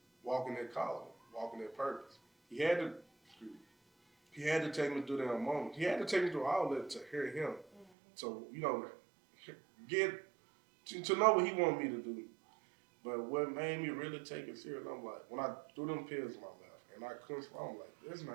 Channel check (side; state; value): left; drops out; at 7.9 s